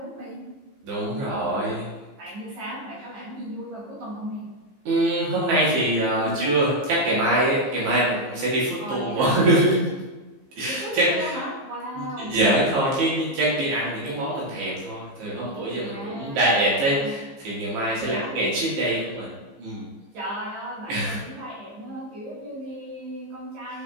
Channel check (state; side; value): late; left; 15 ms